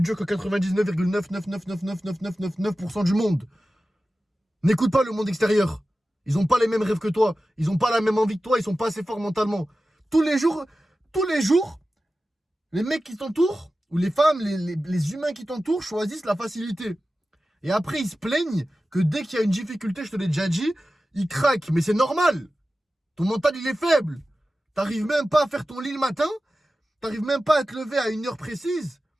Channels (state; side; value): normal; both; correlation 0.94